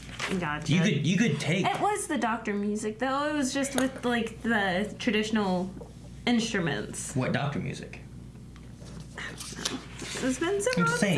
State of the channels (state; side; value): identical; both; correlation 1.00